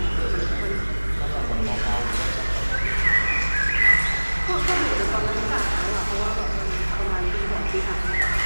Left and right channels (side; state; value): both; inverted; correlation -1.00